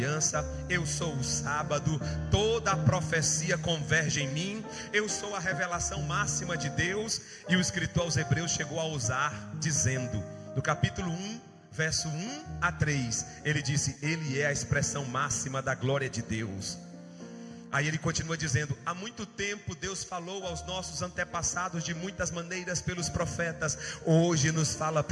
Eu sou o sábado. Toda a profecia converge em mim. Eu sou a revelação máxima de Deus. E o escritor aos Hebreus chegou a ousar dizendo, no capítulo 1, verso 1 a 3, ele disse: ele é a expressão máxima da glória de Deus. Aí ele continua dizendo: há muito tempo Deus falou aos nossos antepassados de muitas maneiras pelos profetas. Hoje nos fala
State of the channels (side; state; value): both; identical; correlation 1.00